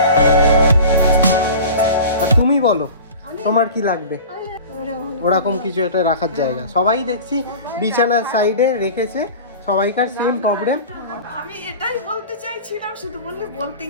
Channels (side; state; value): both; inverted; correlation -0.37